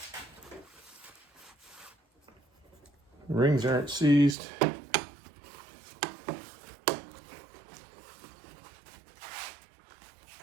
Rings aren't seized.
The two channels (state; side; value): drops out; left; at 4.4 s